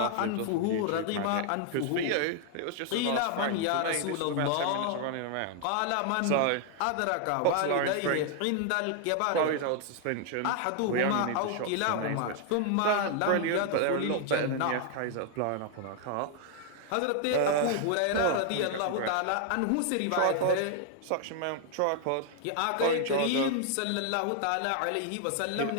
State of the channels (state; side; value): different; both; correlation 0.00